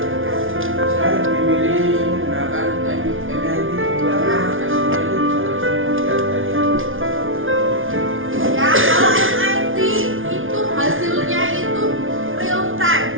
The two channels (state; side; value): late; left; 0.58 ms